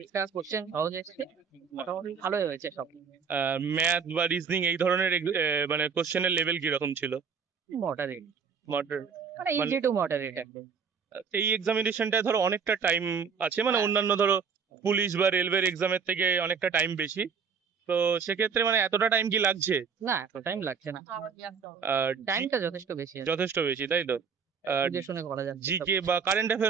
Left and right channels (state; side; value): quieter; left; 6.1 dB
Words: কোশ্চেন সহজ এসছে, মোটামুটি ভালোই হয়েছে সব। ম্যাথ বা রিজনিং এই ধরনের মানে কোশ্চেনের লেভেল কিরকম ছিল? Moderate, Moderate? মানে মানে ইজি টু মডারেট একদম। এই এক্সামিনেশনটায় ধরো অনেকটা টাইম আছে, মানে অন্যান্য ধরো পুলিশ বা রেলওয়ের এক্সামের থেকে অনেকটা টাইম বেশি, তো সেক্ষেত্রে মানে এতটা টাইম কি লাগছে? না, এত টাইম লাগছে না, টাইমটা যথেষ্ট বেশি আছে। যথেষ্ট বেশি, তাই তো? বুঝে শুনে করা যাচ্ছে। জিকে বা কারেন্ট